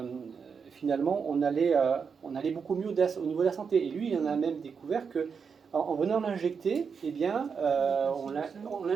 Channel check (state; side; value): quieter; left; 6.0 dB